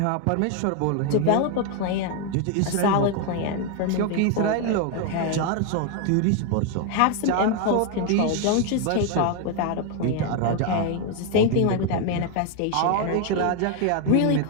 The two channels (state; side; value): different; both; correlation 0.01